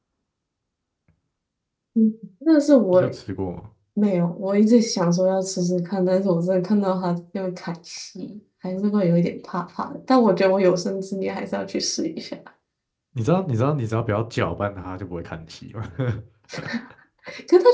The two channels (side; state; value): both; identical; correlation 1.00